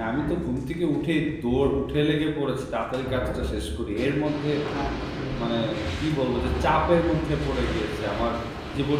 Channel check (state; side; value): identical; both; correlation 1.00